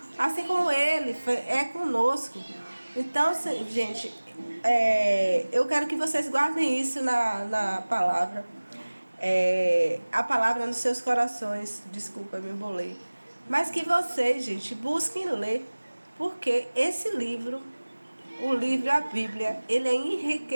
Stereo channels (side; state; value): both; inverted; correlation -1.00